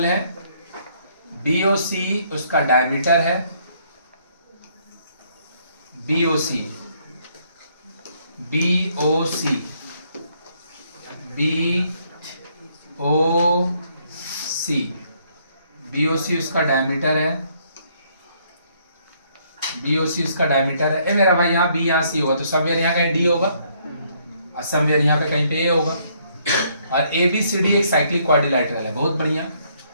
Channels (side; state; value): both; inverted; correlation -0.68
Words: है, BOC उसका डायमीटर है, BOC उसका डायमीटर है, BOC उसका डायमीटर है। ए मेरा भाई यहाँ B यहाँ C होगा तो समवेयर यहाँ कहीं D होगा और समवेयर यहाँ पे कहीं पे A होगा। और ABCD एक साइक्लिक क्वाड्रिलैटरल है। बहुत बढ़िया।